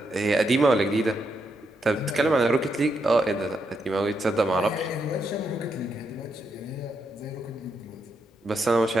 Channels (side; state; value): both; normal; correlation 0.81